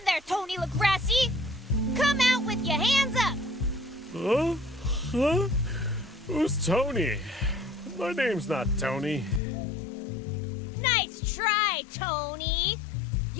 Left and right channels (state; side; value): drops out; right; at 9.4 s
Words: there, Tony LaGrassi! Come out with your hands up! Huh? Huh? Who's Tony? My name's not Tony. Nice try, Tony!